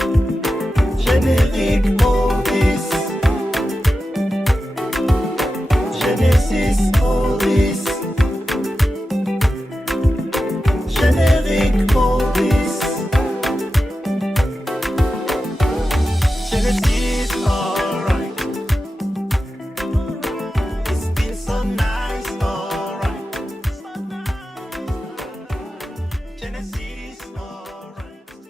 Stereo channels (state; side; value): normal; both; correlation 0.92